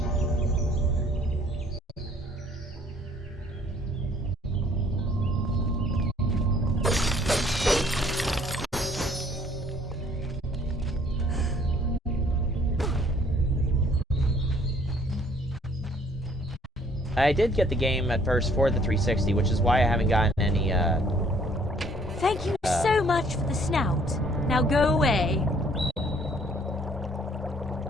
I did get the game at first for the 360, which is why I haven't gotten any, Thank you so much for the snout. Now go away.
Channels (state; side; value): normal; both; correlation 0.61